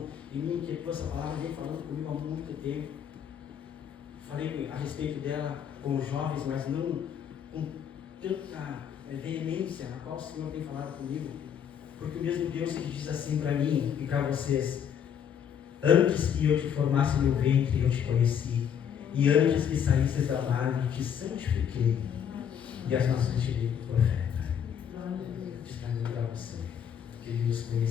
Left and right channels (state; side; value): quieter; right; 8.4 dB